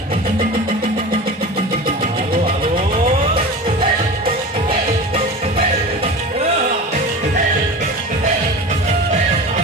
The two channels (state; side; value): normal; both; correlation 0.32